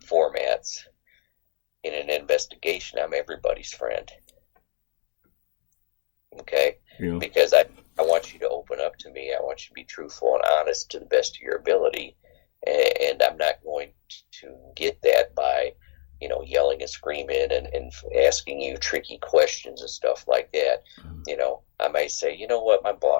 formats, in an investigation, I'm everybody's friend. Okay? Yeah. Because I want you to open up to me. I want you to be truthful and honest to the best of your ability. And I'm not going to get that by, yelling and screaming and asking you tricky questions and stuff like that. I might say, what, my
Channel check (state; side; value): silent; right; digital silence